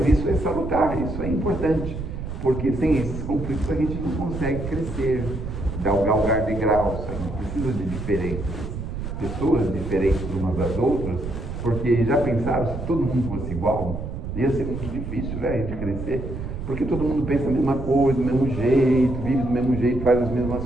isso é salutar, isso é importante, porque sem esses conflitos a gente não consegue crescer, galgar degraus, a gente precisa de diferenças, pessoas diferentes umas das outras, porque já pensaram, se todo mundo fosse igual, ia ser muito difícil, né, a gente crescer, porque todo mundo pensa a mesma coisa, do mesmo jeito, vive do mesmo jeito, faz as mesmas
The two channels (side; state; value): right; noise; rumble, 7 dB below the sound